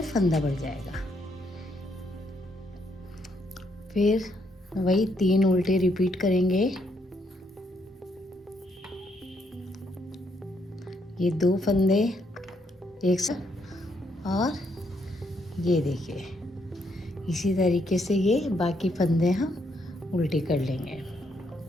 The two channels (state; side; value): normal; both; correlation 0.74